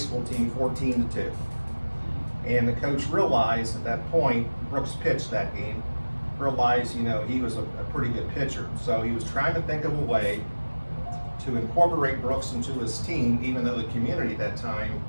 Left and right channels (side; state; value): both; inverted; correlation -1.00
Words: team 14-2. And the coach realized at that point, Brooks pitched that game, realized, he was a pretty good pitcher. So he was trying to think of a way to incorporate Brooks into his team, even though the community at that time